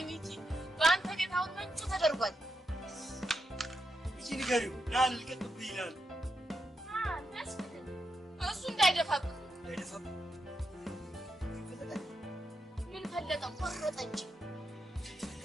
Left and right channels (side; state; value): both; normal; correlation 0.85